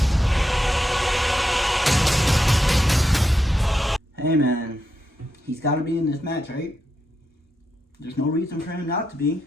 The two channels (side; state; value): both; normal; correlation 0.84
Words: Hey man, he's gotta be in this match, right? There's no reason for him not to be.